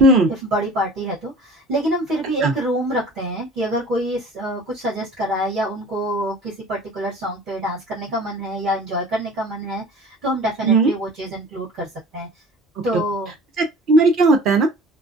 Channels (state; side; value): normal; both; correlation 0.44